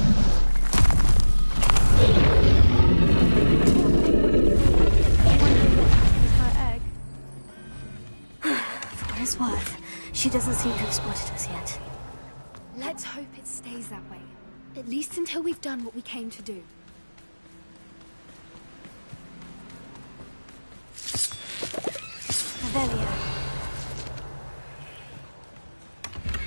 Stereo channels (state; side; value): inverted; both; correlation -1.00